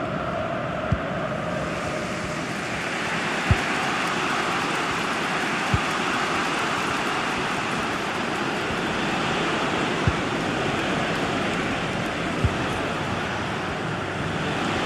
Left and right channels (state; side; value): identical; both; correlation 1.00